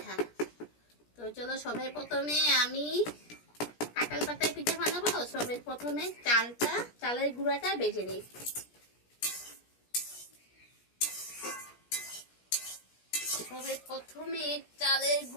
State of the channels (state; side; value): late; right; 17 ms